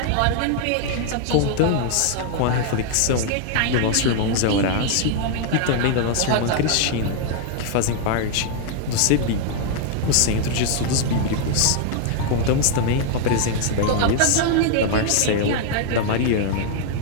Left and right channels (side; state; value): both; different; correlation 0.00